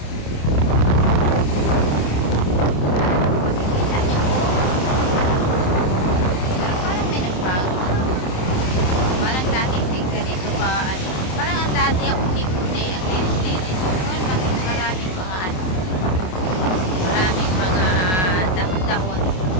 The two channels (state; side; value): late; right; 27 ms